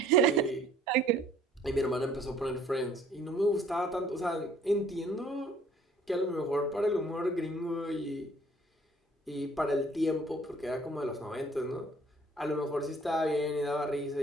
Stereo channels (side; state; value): both; normal; correlation 0.58